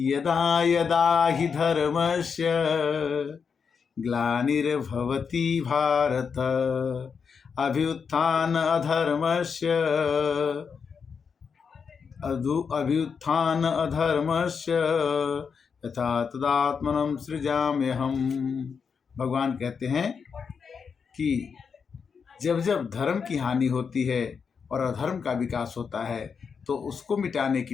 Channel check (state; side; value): quieter; right; 6.1 dB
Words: यदा यदा हि धर्मस्य ग्लानिर्भवति भारत अभ्युत्थान अधर्मस्य अभ्युत्थान अधर्मस्य यथा तदात्मनं सृजाम्यहम्। भगवान कहते हैं कि जब जब धर्म की हानि होती है और अधर्म का विकास होता है तो उसको मिटाने